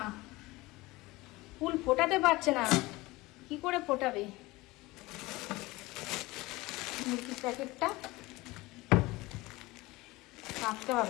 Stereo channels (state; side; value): quieter; right; 21.0 dB